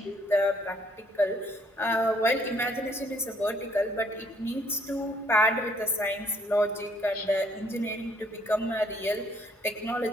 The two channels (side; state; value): both; normal; correlation 0.65